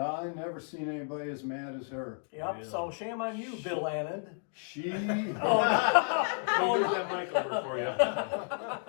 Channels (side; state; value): right; silent; 57 dB below the other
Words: never seen anybody as mad as her. Yep. Really? So shame on you, Bill Anand. She, I'll move that mic over for you.